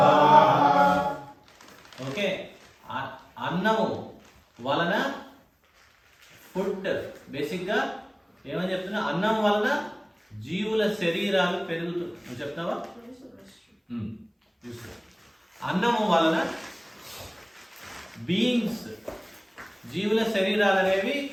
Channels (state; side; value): identical; both; correlation 1.00